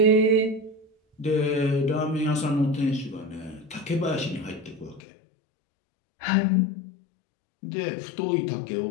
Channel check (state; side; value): drops out; right; at 5.0 s